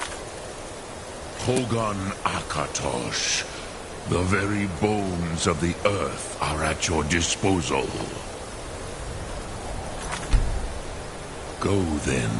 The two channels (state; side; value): identical; both; correlation 1.00